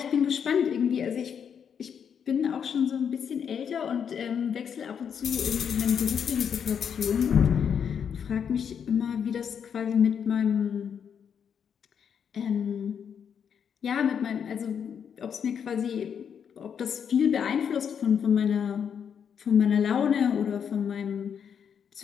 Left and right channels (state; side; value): quieter; right; 7.6 dB